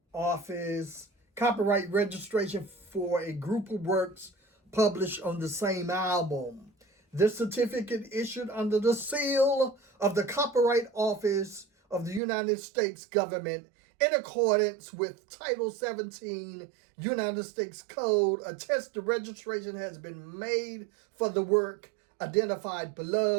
Office, copyright registration for a group of works published on the same album. This certificate, issued under the seal of the Copyright Office of the United States government in accordance with Title 17 United States Code, attests the registration has been made for the work identified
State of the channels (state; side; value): drops out; left; at 12.2 s